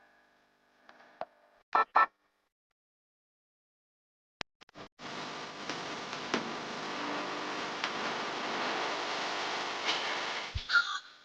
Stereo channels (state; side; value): identical; both; correlation 1.00